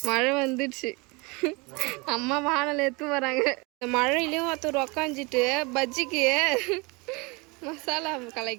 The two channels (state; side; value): quieter; left; 27.6 dB